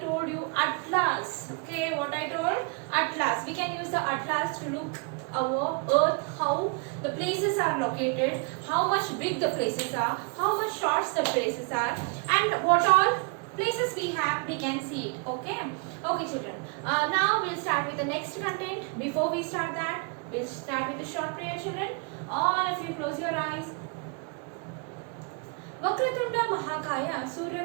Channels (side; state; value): left; quieter; 34.8 dB